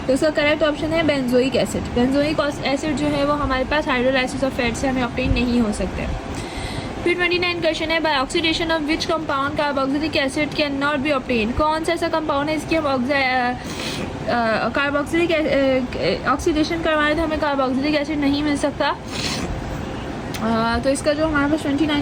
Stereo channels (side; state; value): both; identical; correlation 1.00